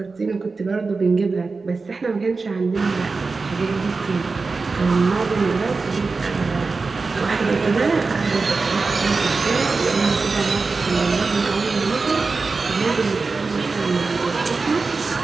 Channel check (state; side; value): quieter; left; 4.1 dB